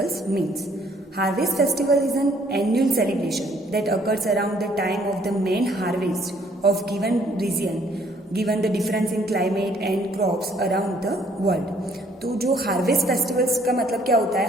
means? Harvest festival is an annual celebration that occurs around the time of the main harvest of given region, given the difference in climate and crops around the world. तो जो harvest festivals का मतलब क्या होता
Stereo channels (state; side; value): normal; both; correlation 0.63